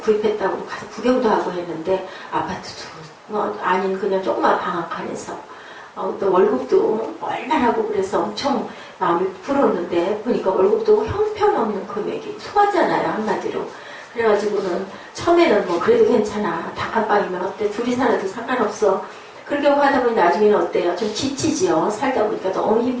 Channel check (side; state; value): both; identical; correlation 1.00